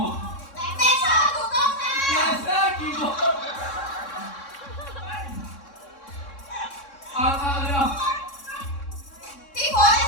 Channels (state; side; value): late; right; 3.6 ms